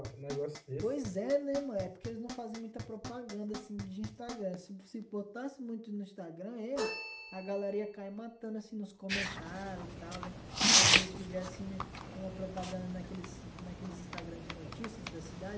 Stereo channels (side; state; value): both; identical; correlation 1.00